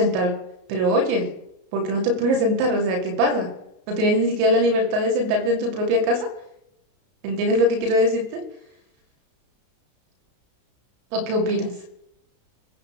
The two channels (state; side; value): late; left; 32 ms